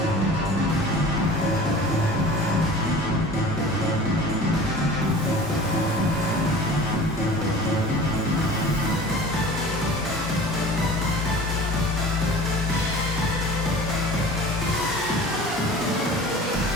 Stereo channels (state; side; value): normal; both; correlation 0.41